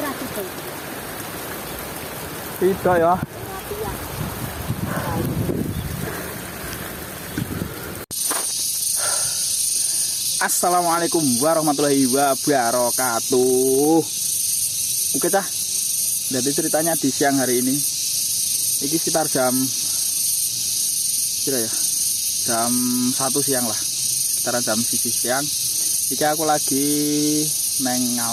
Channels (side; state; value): both; identical; correlation 1.00